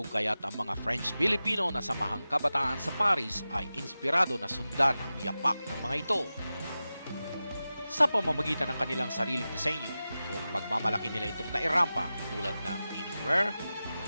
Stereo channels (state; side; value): inverted; both; correlation -0.94